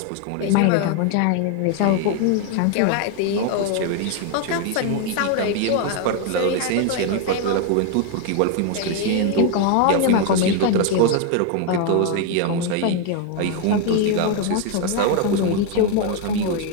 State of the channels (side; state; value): both; different; correlation 0.01